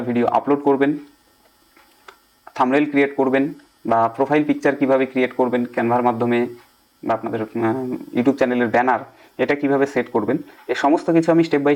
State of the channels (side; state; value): both; identical; correlation 1.00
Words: ভিডিও আপলোড করবেন, থাম্বনেইল ক্রিয়েট করবেন, বা প্রোফাইল পিকচার কিভাবে ক্রিয়েট করবেন ক্যানভার মাধ্যমে, বা আপনাদের ইউটিউব চ্যানেলের ব্যানার এটা কিভাবে সেট করবেন, এই সমস্ত কিছু আমি স্টেপ বাই